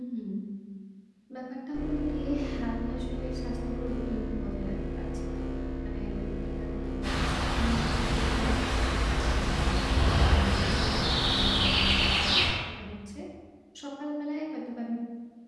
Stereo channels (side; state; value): both; identical; correlation 1.00